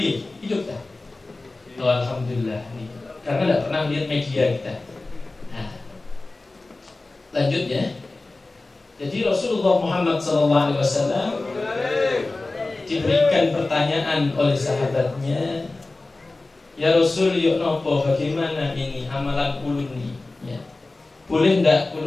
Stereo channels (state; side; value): quieter; right; 3.2 dB